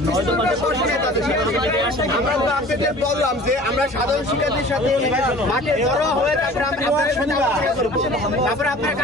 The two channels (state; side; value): normal; both; correlation 0.44